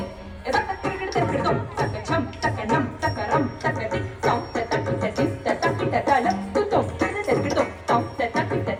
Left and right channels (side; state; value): both; identical; correlation 1.00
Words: edak kirkir dom takka jam takka nam ram takka tik tom takka tik takka tala kutom takka tom takka